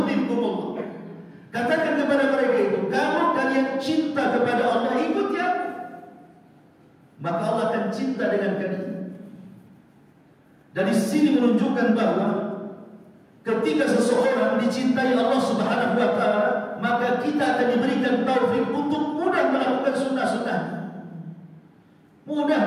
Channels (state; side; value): identical; both; correlation 1.00